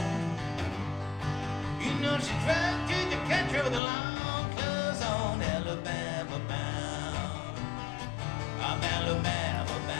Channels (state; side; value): drops out; right; at 3.8 s